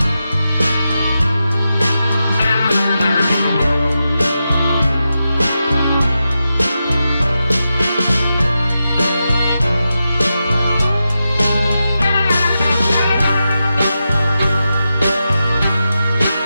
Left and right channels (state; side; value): inverted; both; correlation -0.89